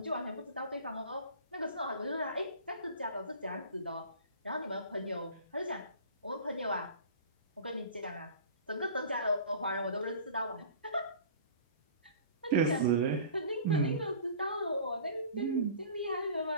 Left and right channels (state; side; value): inverted; both; correlation -0.42